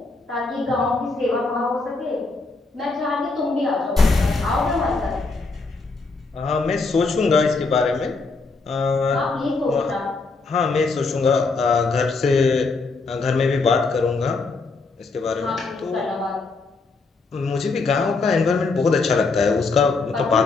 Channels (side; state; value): right; quieter; 3.9 dB